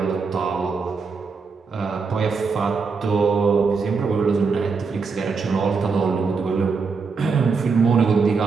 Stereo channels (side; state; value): left; quieter; 4.9 dB